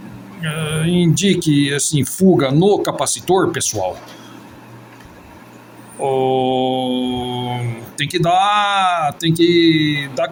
indique assim fuga no capacitor, pessoal, tem que dar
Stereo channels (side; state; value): both; identical; correlation 1.00